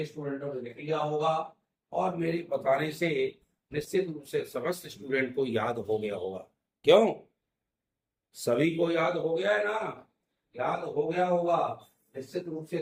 स्टूडेंटों ने लिख लिया होगा और मेरे बताने से निश्चित रूप से समस्त स्टूडेंट को याद हो गया होगा। क्यों? सभी को याद हो गया है ना? याद हो गया होगा। निश्चित रूप से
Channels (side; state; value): both; identical; correlation 1.00